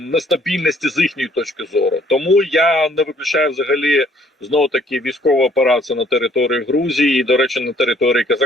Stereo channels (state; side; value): normal; both; correlation 0.61